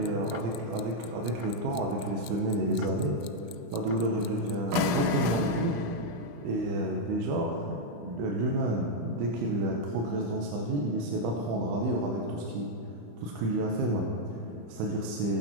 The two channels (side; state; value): left; late; 34 ms